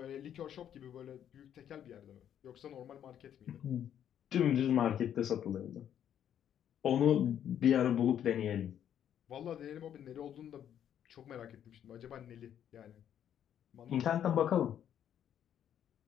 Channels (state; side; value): quieter; right; 9.8 dB